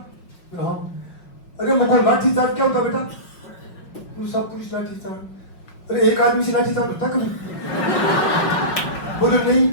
हाँ, अरे मुझको लाठी चार्ज क्या होता बेटा? सब पुलिस लाठी चार्ज। अरे एक आदमी से लाठी चार्ज होता कभी? बोले नहीं।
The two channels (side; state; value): right; late; 5.5 ms